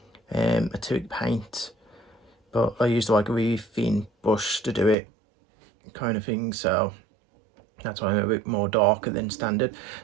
acrylic paint, but I used like a really thin brush to do it, kind of thing. So that's why I'm a bit more darker than standard.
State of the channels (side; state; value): left; drops out; at 5.0 s